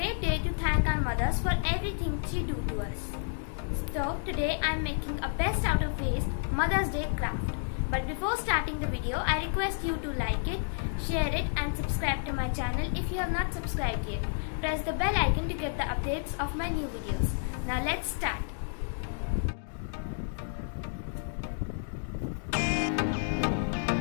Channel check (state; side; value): silent; right; digital silence